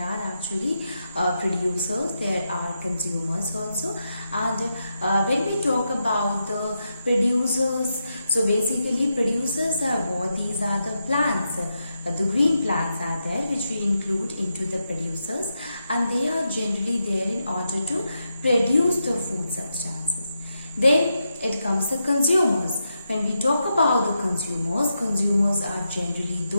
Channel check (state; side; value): inverted; both; correlation -0.85